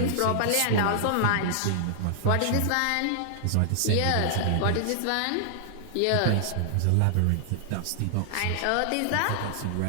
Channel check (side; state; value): both; different; correlation -0.01